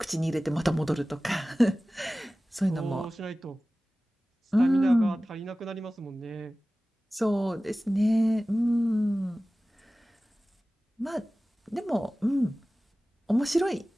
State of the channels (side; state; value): both; normal; correlation 0.97